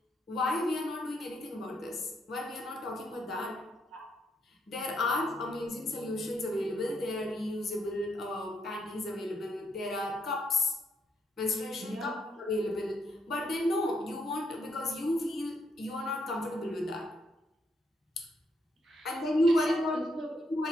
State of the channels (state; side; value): normal; both; correlation 0.76